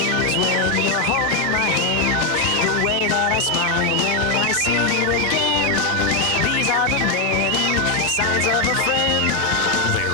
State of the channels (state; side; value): normal; both; correlation 0.05